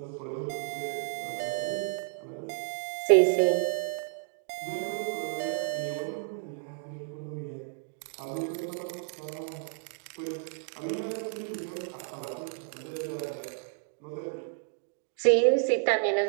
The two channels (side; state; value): left; silent; 57 dB below the other